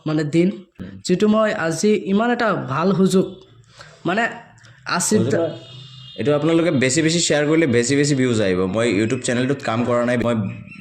মানে দিন, যিটো মই আজি ইমান এটা ভাল সুযোগ মানে এইটো আপোনালোকে বেছি শ্বেয়াৰ কৰিলে বেছি ভিউজ আহিব মই ইউটিউব চেনেলটোত কাম কৰা নাই মই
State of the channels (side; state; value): both; identical; correlation 1.00